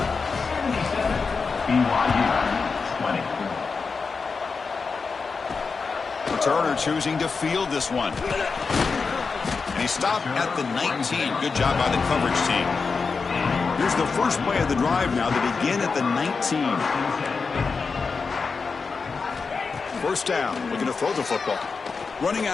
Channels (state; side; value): quieter; right; 4.8 dB